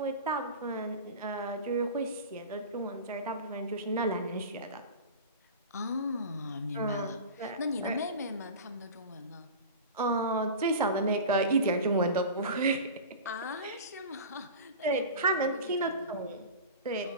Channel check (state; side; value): inverted; both; correlation -0.32